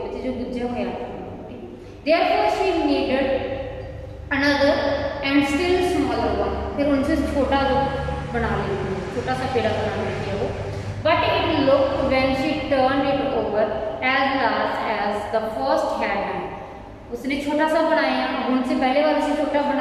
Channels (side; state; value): both; identical; correlation 1.00